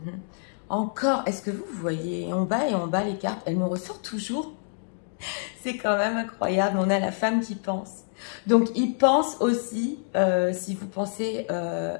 Encore, est-ce que vous voyez en bas et en bas les cartes, elles nous ressortent toujours. C'est quand même incroyable. On a la femme qui pense. Donc, il pense aussi, si vous pensez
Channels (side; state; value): right; silent; digital silence